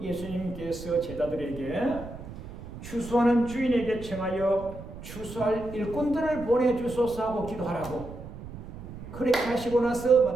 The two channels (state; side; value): noise; right; rumble, 13 dB below the sound